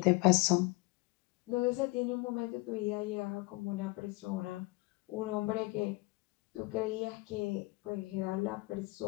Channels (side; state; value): right; quieter; 24.4 dB